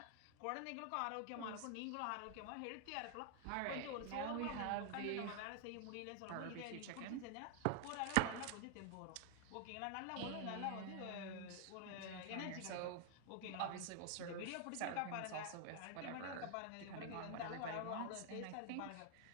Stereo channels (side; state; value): both; different; correlation 0.00